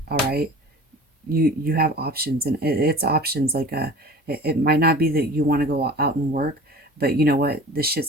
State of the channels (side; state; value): both; normal; correlation 0.41